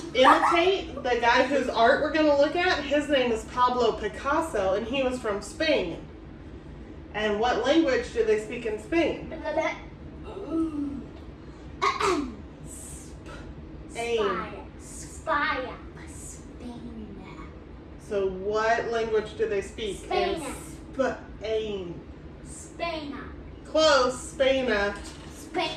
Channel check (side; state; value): both; identical; correlation 1.00